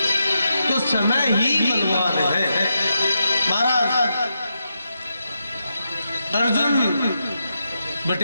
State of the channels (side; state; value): both; inverted; correlation -0.85